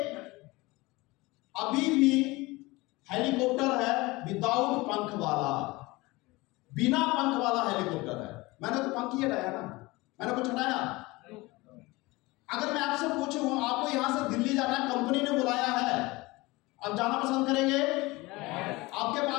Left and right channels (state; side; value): quieter; right; 22.2 dB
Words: अभी भी हेलीकॉप्टर है विदाउट पंख वाला, बिना पंख वाला हेलीकॉप्टर है। मैंने तो पंख ही हटाया ना, मैंने कुछ हटाया? अगर मैं आपसे पूछूं आपको यहां से दिल्ली जाना है, कंपनी ने बुलाया है, आप जाना पसंद करेंगे? आपके